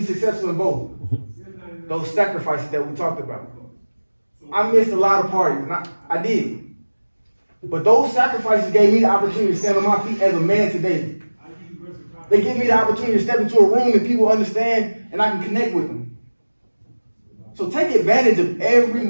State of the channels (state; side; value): inverted; both; correlation -1.00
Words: successful in both? Those sacrifices that we talked about. I missed a lot of parties, and I did. But those sacrifices gave me the opportunity to stand on my feet as a man today. They give me the opportunity to step into a room and people understand and I can connect with them. So take advantage of every